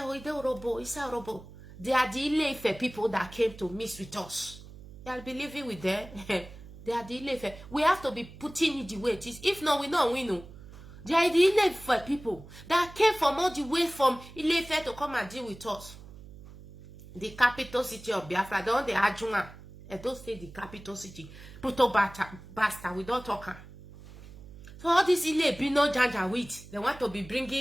it is Orobo, it's a Orobo. They are the Ile Ife people that came to mix with us. I'll be living with them. They are the Ile Ife. We have to be putting it the way it is. If not, we know. They are the Ile Ife people that came from all the way from Ile Ife to come and deal with us. The capital city of Biafra, the one they Ajunga. I don't say the capital city. Puto basta, we don't talk. So all this Ile Bino Janja with, they want to be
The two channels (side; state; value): right; noise; hum, 17 dB below the sound